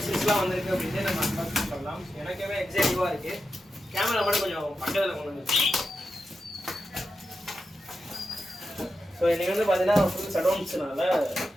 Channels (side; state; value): both; normal; correlation 0.89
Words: வந்திருக்கு அப்படின்ட்டு நம்ம அன்பாக்ஸ் பண்ணலாம். எனக்குமே எக்ஸைட்டிவாக இருக்குது. கேமரா மட்டும் கொஞ்சம் பக்கத்தில் கொண்டு வந்துருக்கு. ஸோ இன்னைக்கு வந்து பார்த்தீங்கன்னா ஃபுல் ஷட்டவுன்ஸ்னால